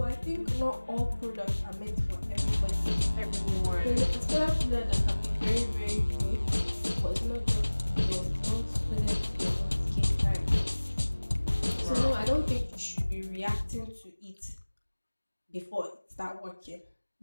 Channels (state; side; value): inverted; both; correlation -1.00